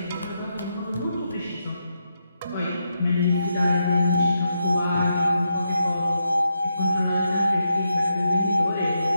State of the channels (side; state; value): both; inverted; correlation -0.83